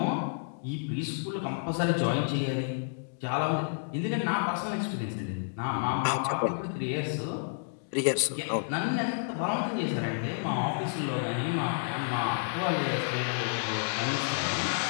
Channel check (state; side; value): silent; right; digital silence